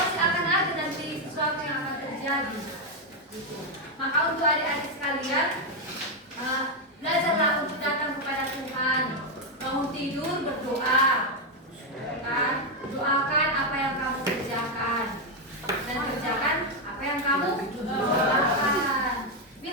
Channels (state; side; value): normal; both; correlation 0.03